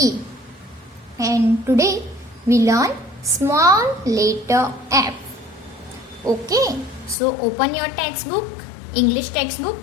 And today we learn small letter F. Okay, so open your textbook, English textbook,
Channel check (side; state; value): right; drops out; at 7.2 s